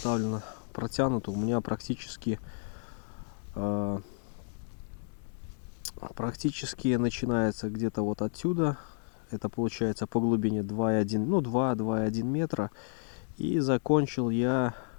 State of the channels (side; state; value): right; silent; digital silence